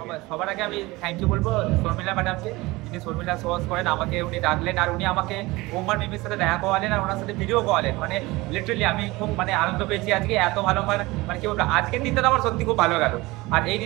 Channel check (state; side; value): quieter; left; 21.3 dB